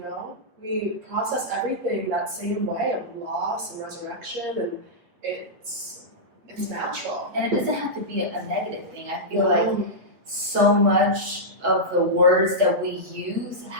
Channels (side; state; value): left; late; 8.3 ms